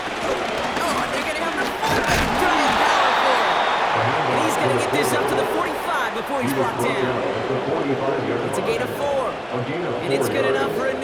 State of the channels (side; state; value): both; identical; correlation 1.00